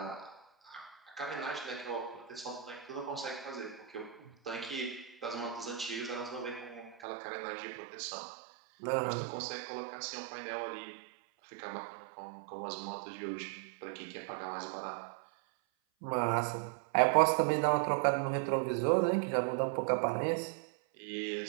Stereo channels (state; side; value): drops out; left; at 7.0 s